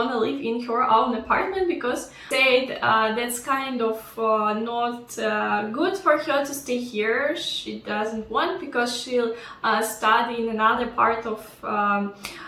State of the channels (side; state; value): both; identical; correlation 1.00